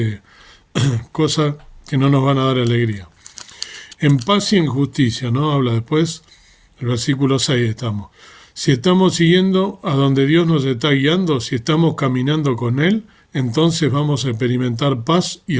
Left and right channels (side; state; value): both; identical; correlation 1.00